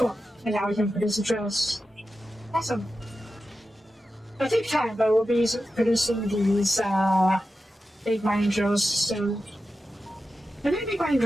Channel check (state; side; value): normal; both; correlation 0.92